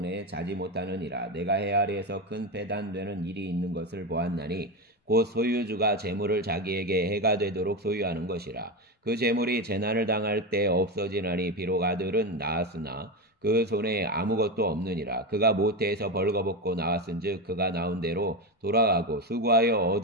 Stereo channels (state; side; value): normal; both; correlation 0.16